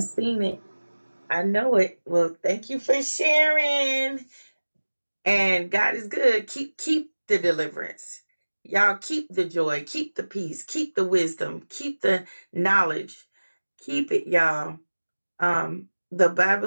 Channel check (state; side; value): inverted; both; correlation -1.00